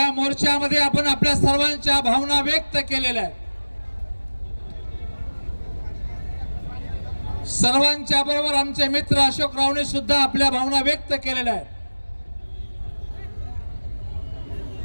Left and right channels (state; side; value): inverted; both; correlation -1.00